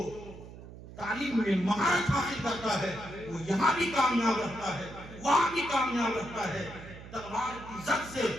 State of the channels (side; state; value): right; noise; hum, 15 dB below the sound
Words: تعلیم میں مہارت حاصل کرتا ہے وہ یہاں بھی کامیاب رہتا ہے وہاں بھی کامیاب رہتا ہے. تلوار کی زد سے